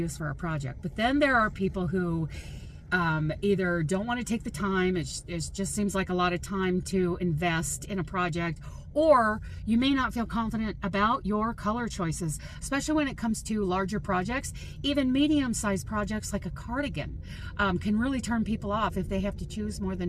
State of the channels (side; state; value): both; identical; correlation 1.00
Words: for our project. But then there are people who either don't want to take the time, it just seems like a lot of time to invest in a project, or you may not feel confident about your color choices, especially when it comes to larger projects. Even medium-sized projects like a cardigan can really turn people off if they have to choose more